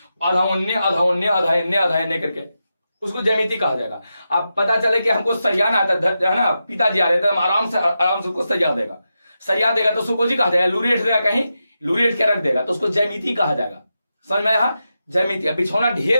आधा उन्ने आधा उन्ने आधा इन्ने आधा इन्ने करके, उसको ज्यामिति कहा जाएगा। अब पता चले कि हमको सरियाना आता है ना, पिताजी आ रहे थे, हम आराम से उसको सरिया देगा तो उसको कहा जाएगा, लूरेट देगा, कहीं लूरेट के रख देगा तो उसको ज्यामिति कहा जाएगा। समझ में आया, ज्यामिति। बिछौना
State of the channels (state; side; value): inverted; both; correlation -0.89